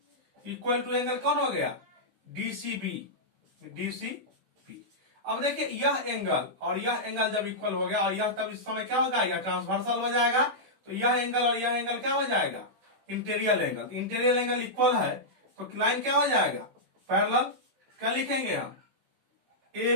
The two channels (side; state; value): left; late; 16 ms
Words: equal to angle कौन हो गया, डीसीबी, डीसीबी। अब देखिए यह एंगल और यह एंगल जब इक्वल हो गया, और यह तब इस समय क्या होगा, यह ट्रांसवर्सल हो जाएगा। तो यह एंगल और यह एंगल क्या हो जाएगा, interior angle. Interior angle equal है तो लाइन क्या हो जाएगा, पैरेलल। क्या लिखेंगे हम, A